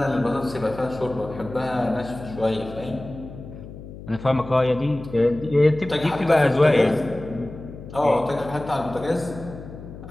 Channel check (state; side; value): noise; left; hum, 14 dB below the sound